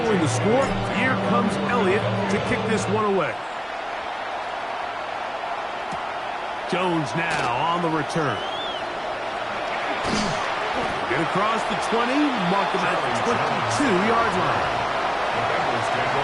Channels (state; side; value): identical; both; correlation 1.00